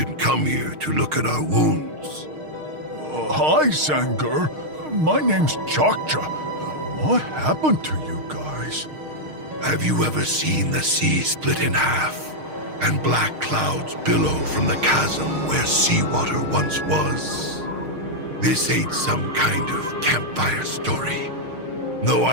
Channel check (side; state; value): left; late; 6.5 ms